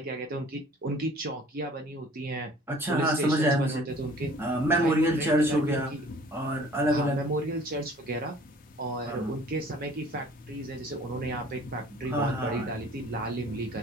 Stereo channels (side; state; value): both; normal; correlation 0.51